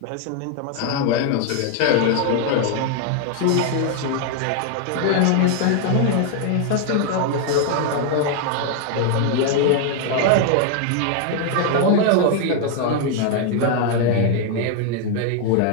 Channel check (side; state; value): both; different; correlation 0.00